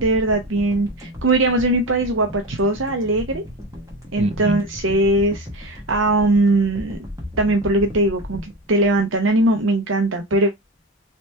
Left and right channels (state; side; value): normal; both; correlation 0.24